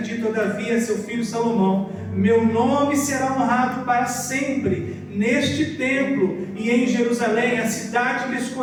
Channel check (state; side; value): identical; both; correlation 1.00